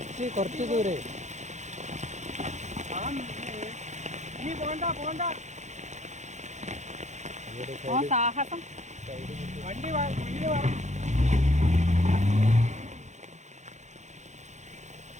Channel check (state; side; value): late; left; 0.34 ms